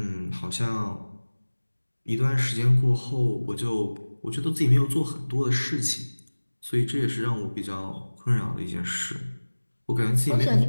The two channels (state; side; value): inverted; both; correlation -1.00